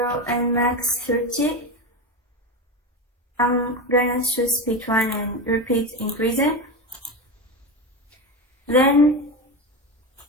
and max 30. I'm gonna choose speed 1 and repeat increasing. Then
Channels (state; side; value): normal; both; correlation 0.19